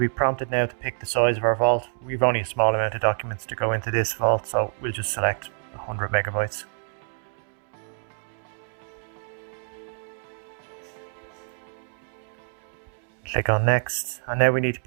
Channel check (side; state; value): left; silent; digital silence